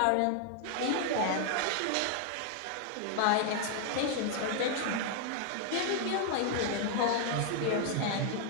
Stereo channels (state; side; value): different; both; correlation 0.00